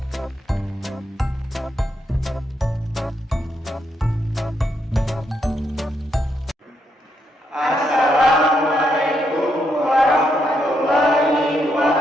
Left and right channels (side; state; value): both; normal; correlation 0.78